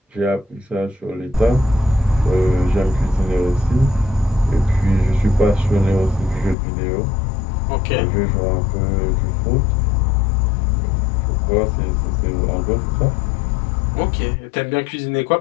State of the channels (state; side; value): drops out; right; at 6.6 s